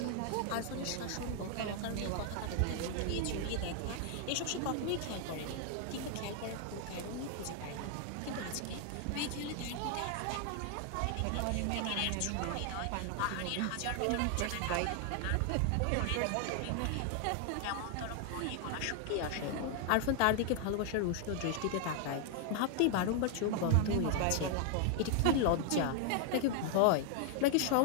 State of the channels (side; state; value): both; different; correlation 0.00